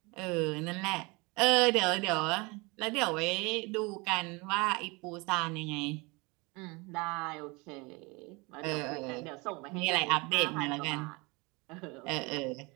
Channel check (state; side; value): quieter; left; 26.7 dB